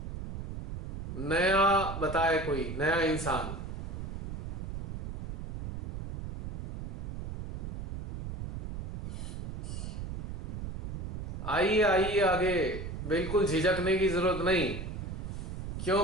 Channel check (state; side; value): noise; right; rumble, 5 dB below the sound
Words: नया बताए कोई नया इंसान। आइए आइए आगे, बिल्कुल झिझकने की जरूरत नहीं,